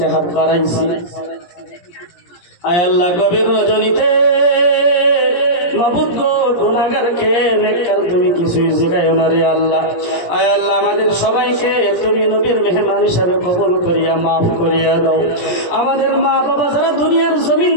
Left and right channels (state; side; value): late; right; 17 ms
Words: হাত বাড়াইছি। আয় আল্লাহ গভীর রজনীতে মাবুদ গো গুনাহগারকে নেককার তুমি কিছুই জিগায়ো না রে আল্লাহ। আয় আল্লাহ আমাদের সবাইকে তুমি নবীর মেহমান হিসাবে কবুল করিয়া মাফ করিয়া দাও। আমাদের মা বাবা যারা দুনিয়ার জমিন